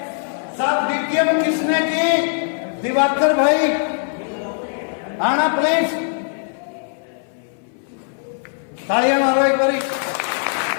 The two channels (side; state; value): right; silent; 60 dB below the other